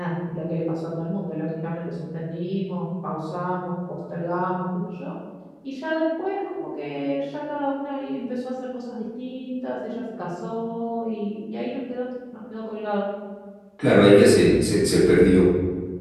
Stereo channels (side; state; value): both; identical; correlation 1.00